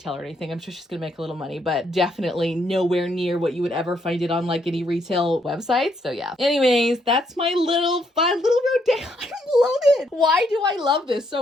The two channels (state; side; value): normal; both; correlation 0.73